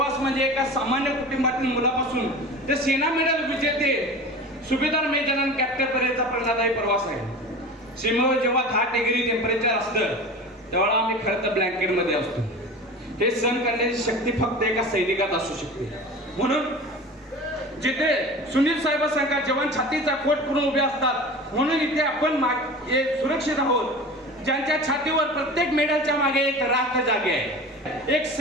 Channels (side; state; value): both; normal; correlation 0.35